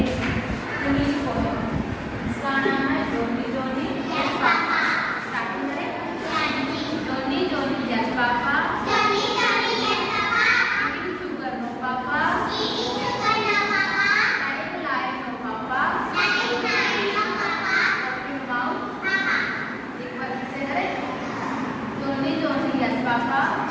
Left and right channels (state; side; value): identical; both; correlation 1.00